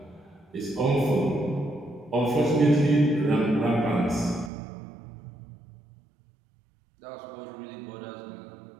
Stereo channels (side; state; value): left; drops out; at 4.5 s